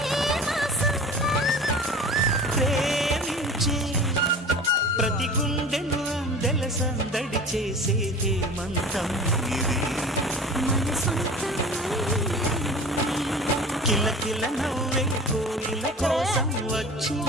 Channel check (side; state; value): both; normal; correlation 0.39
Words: ఏ మాసం? ప్రేమించే ప్రతి గుండెను అందెల సందడి చేసే హేమంతం ఇది. మన సొంతం కిల కిల నవ్వే కోయిల కోసం